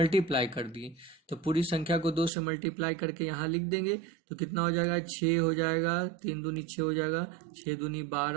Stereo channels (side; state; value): left; drops out; at 2.3 s